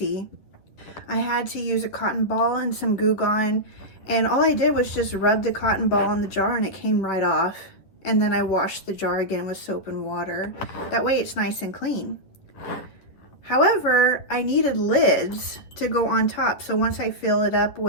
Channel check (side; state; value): right; late; 10 ms